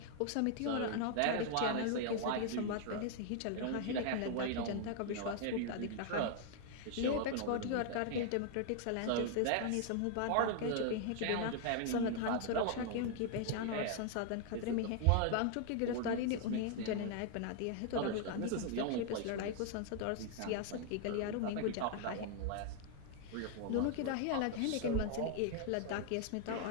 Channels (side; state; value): both; different; correlation 0.00